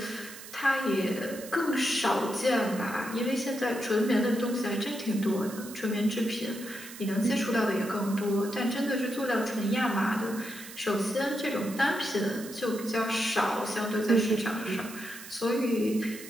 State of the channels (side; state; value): right; noise; hiss, 14 dB below the sound